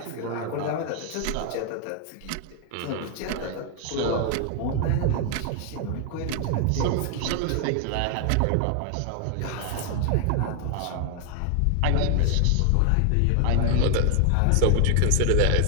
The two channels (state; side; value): different; both; correlation 0.00